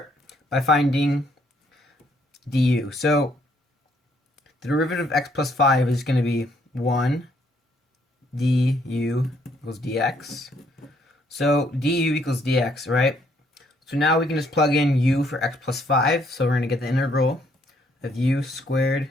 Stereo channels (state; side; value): normal; both; correlation 0.68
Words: by finding du. So the derivative of x plus 5 is going to be 1 du equals dx. So du equals dx, right? So now we can just plug in u for x plus 5. So we're going to get the integral of u squared